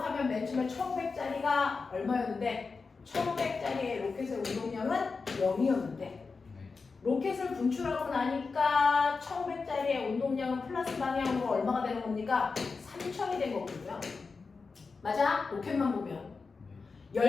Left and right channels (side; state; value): right; quieter; 4.5 dB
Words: 맨 처음에 1500짜리가 얼마였는데 1500짜리의 로켓의 운동량은 0이었는데 네. 로켓을 분출하고 나니까 1500짜리의 운동량은 플러스 방향으로 얼마가 되는 겁니까? 3000이 된 거거든요. 맞아? 로켓만 보면.